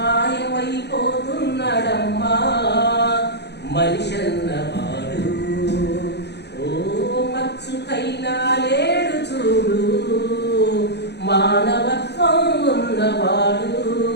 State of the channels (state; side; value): late; right; 0.49 ms